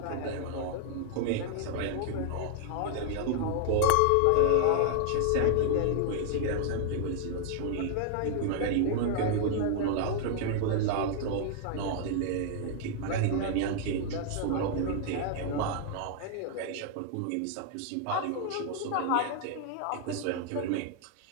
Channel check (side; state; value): both; different; correlation 0.00